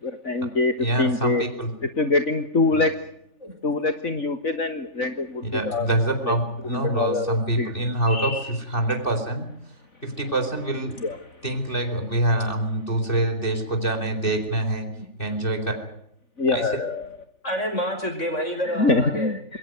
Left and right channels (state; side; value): late; right; 3.4 ms